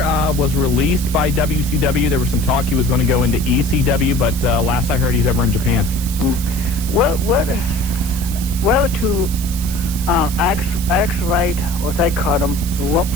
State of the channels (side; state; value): right; noise; hiss, 12 dB below the sound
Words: was released by WCW. There was some talk he was going to go into ECW, but last I heard he's over in Japan. What to Alex Wright, what I call him,